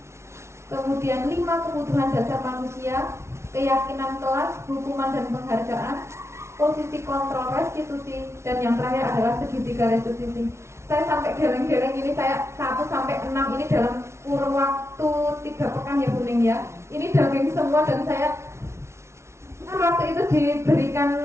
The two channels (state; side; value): late; left; 0.13 ms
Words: kemudian 5 kebutuhan dasar manusia, keyakinan kelas, hukuman dan penghargaan, posisi kontrol restitusi, dan yang terakhir adalah segitiga restitusi. Saya sampai geleng-geleng ini, saya 1 sampai 6 ini dalam kurun waktu 3 pekan ya Bu Ning ya. Ini daging semua dan saya waktu itu